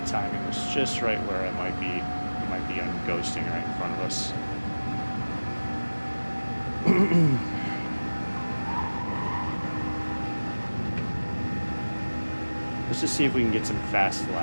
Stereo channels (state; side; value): inverted; both; correlation -1.00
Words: timing was just right where I might be on ghosting right in front of us. Let's just see if we can get some fast